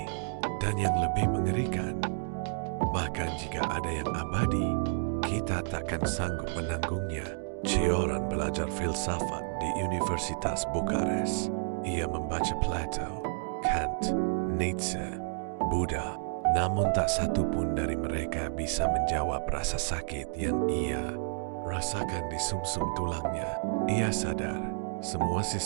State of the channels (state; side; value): silent; left; digital silence